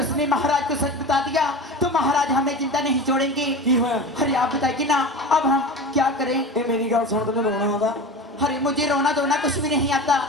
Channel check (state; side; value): normal; both; correlation 0.30